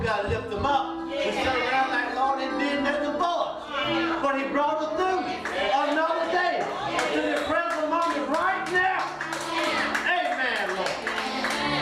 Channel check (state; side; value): identical; both; correlation 1.00